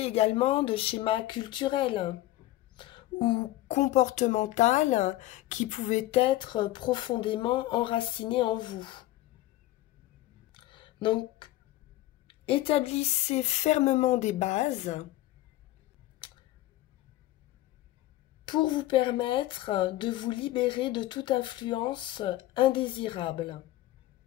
également de schémas culturels ou comportemental qui pouvaient être profondément enracinés en vous. Donc, établissez fermement des bases pour vous permettre de vous libérer de toute influence indésirable.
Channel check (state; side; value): quieter; right; 15.8 dB